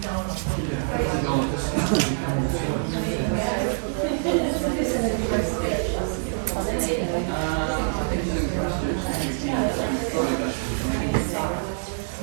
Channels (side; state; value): left; silent; digital silence